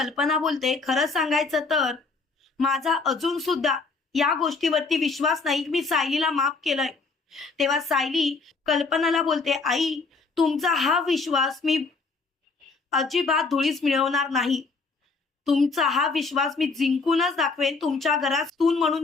बोलते, खरं सांगायचं तर माझा अजून सुद्धा या गोष्टीवरती विश्वास नाही. मी सायलीला माफ केलंय. तेव्हा सायली कल्पनाला बोलते, आई तुमचा हा विश्वास मी अजिबात धुळीस मिळवणार नाही. तुमचा हा विश्वास मी जिंकूनच दाखवेन. तुमच्या घरात सून म्हणून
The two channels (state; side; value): quieter; right; 4.2 dB